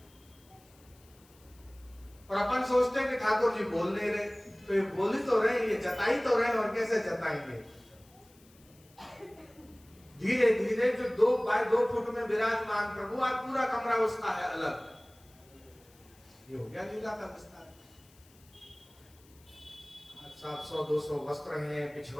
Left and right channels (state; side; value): noise; left; hiss, 28 dB below the sound